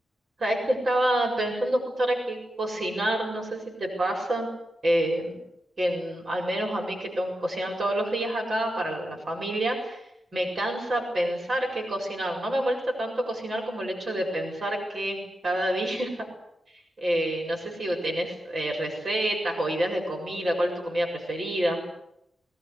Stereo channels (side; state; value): both; normal; correlation 0.88